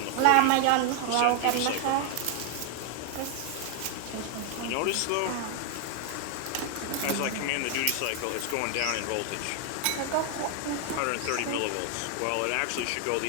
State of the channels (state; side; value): different; both; correlation 0.00